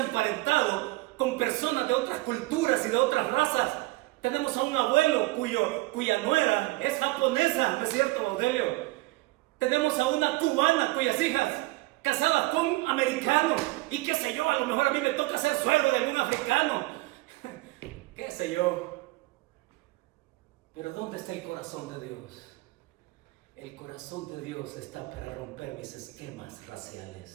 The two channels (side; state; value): left; quieter; 20.9 dB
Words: con personas de otras culturas y de otras razas. Tenemos a un abuelo cuya nuera es japonesa, ¿no es cierto, Baudelio? Tenemos a una cubana cuyas hijas casadas con americanos. Y qué sé yo, a lo mejor a mí me toca ser suegro de algún africano. Qué sé yo. Pero ¿dónde está el corazón de Dios? El corazón de Dios está para romper mis esquemas